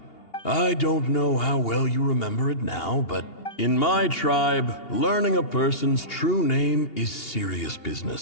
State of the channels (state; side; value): late; right; 2.8 ms